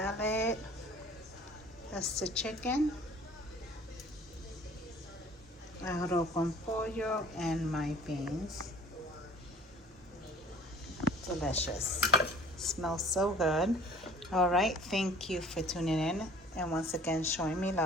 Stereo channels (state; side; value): normal; both; correlation 0.49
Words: That's the chicken. Arroz con pollo and my beans. Delicious. Smells so good. All right, thank you for tuning in and once again showing me